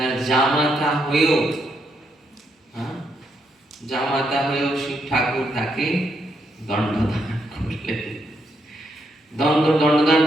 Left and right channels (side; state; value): both; normal; correlation 0.78